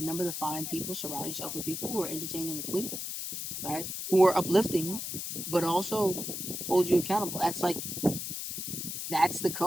to find people, surround yourself with people who are entertaining the queen, right? Who are uplifting, but also hold you accountable. That's the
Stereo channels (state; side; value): noise; left; hiss, 5 dB below the sound